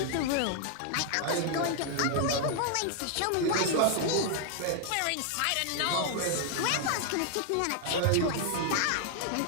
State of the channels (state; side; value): different; both; correlation 0.00